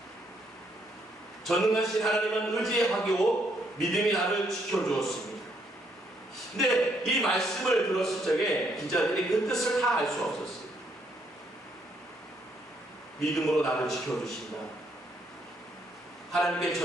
전능하신 하나님은 의지하고 믿음이 나를 지켜주었습니다. 근데 이 말씀을 들었을 적에 기자들이 그 뜻을 다 알 수 없었어요. 믿음으로 나를 지켜주신다. 하나님께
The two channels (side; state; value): both; normal; correlation 0.72